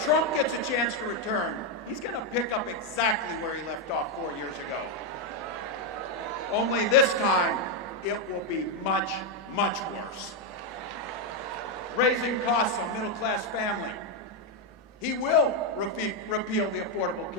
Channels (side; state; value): both; normal; correlation 0.03